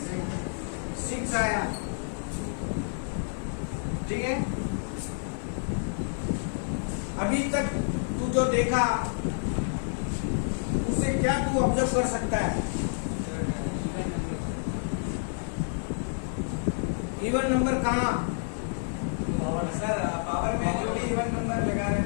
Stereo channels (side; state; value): right; silent; 59 dB below the other